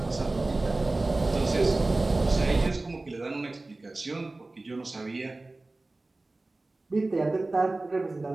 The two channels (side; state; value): left; quieter; 3.1 dB